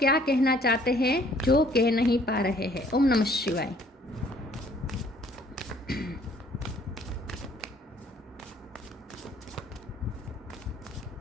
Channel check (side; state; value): both; normal; correlation 0.59